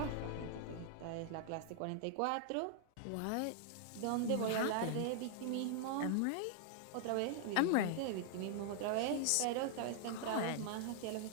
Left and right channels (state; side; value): different; both; correlation -0.01